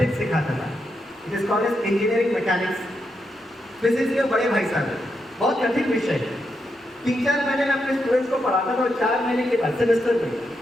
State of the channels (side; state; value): both; normal; correlation 0.83